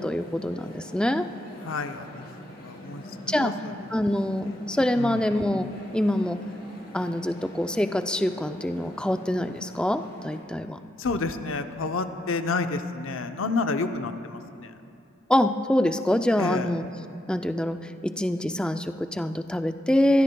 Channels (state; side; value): normal; both; correlation 0.82